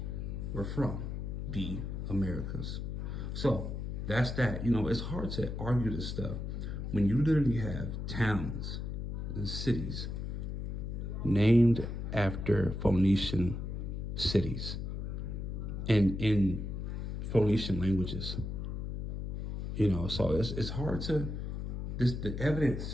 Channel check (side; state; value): left; noise; hum, 4 dB below the sound